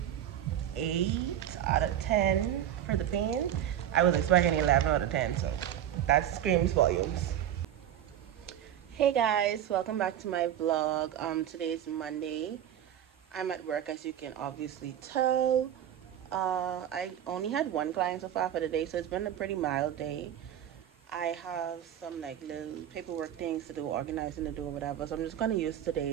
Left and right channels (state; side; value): quieter; left; 10.7 dB